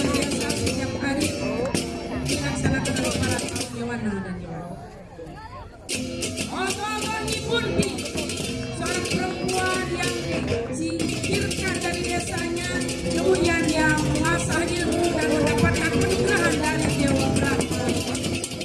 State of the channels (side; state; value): both; identical; correlation 1.00